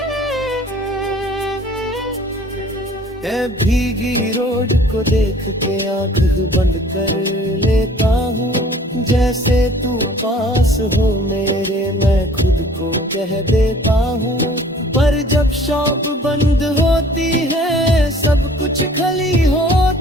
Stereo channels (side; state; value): both; normal; correlation 0.52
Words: ए भीगी रोड को देख के आँख बंद कर लेता हूँ। जैसे तू पास हो मेरे, मैं खुद को कह देता हूँ। पर जब शॉप बंद होती है सब कुछ खाली